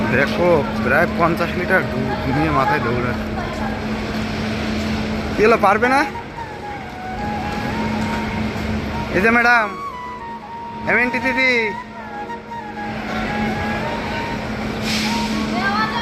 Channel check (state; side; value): identical; both; correlation 1.00